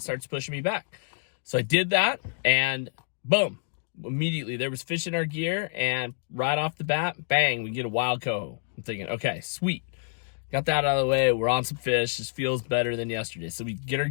starts pushing me back. So I did that, and boom. Immediately there was fish in our gear, and right off the bat, bang, we get a wild coho. I'm thinking, okay, sweet, got that out of the way. We're on some fish. This feels better than yesterday. So we get our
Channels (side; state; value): right; silent; 60 dB below the other